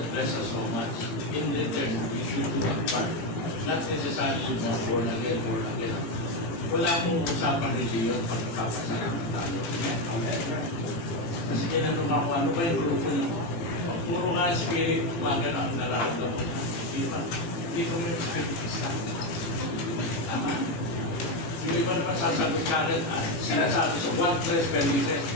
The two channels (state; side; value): late; right; 18 ms